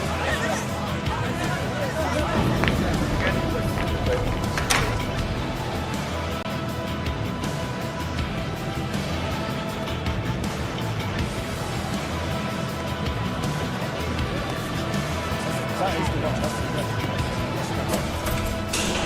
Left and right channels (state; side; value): identical; both; correlation 1.00